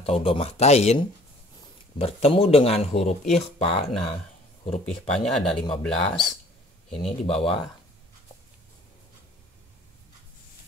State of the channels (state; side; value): normal; both; correlation 0.54